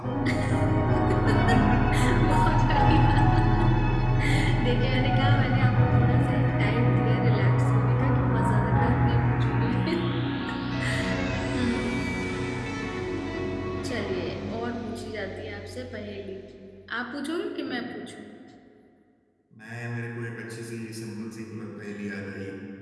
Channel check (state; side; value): identical; both; correlation 1.00